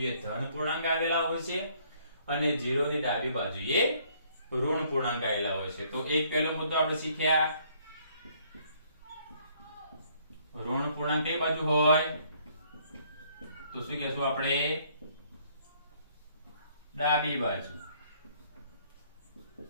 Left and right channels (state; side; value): inverted; both; correlation -0.64